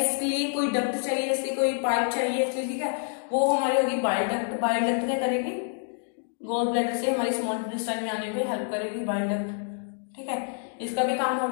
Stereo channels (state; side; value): silent; right; 60 dB below the other